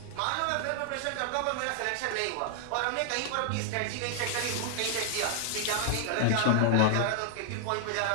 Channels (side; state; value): both; different; correlation -0.01